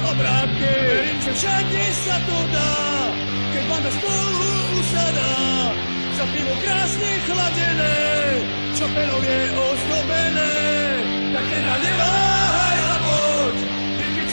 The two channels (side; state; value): both; inverted; correlation -1.00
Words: obrátky. Verím, že všade sa to dá, keď banda spolu usadá. Za pivo krásne chladené, čo penou je ozdobené. Tak teda neváhaj a poď, vypiť